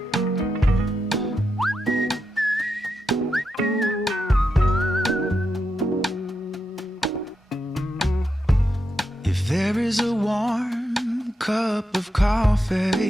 If there is a warm cup of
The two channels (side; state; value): both; normal; correlation 0.85